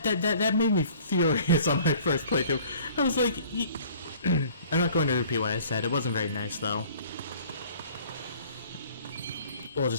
made me furious on my first playthrough. I was like, I'm not going to repeat what I said. It wasn't very nice, though. We'll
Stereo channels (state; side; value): inverted; both; correlation -0.52